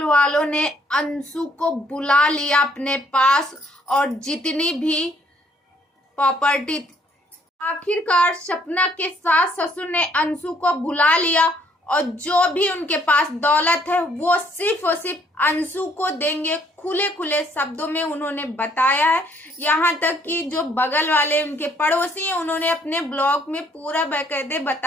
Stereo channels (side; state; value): both; normal; correlation 0.65